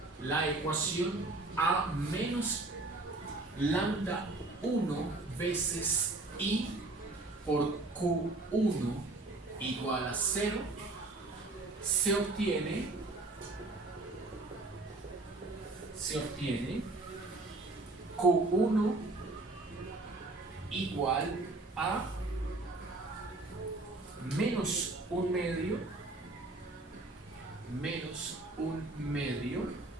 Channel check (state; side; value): quieter; left; 3.1 dB